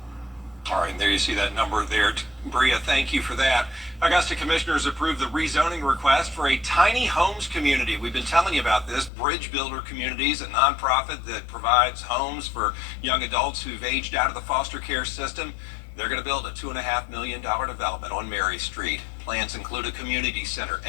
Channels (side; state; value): right; drops out; at 9.1 s